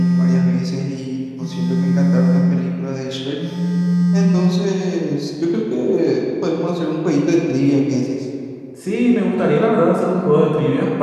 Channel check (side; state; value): both; identical; correlation 1.00